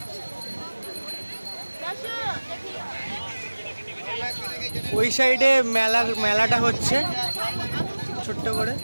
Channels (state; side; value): inverted; both; correlation -1.00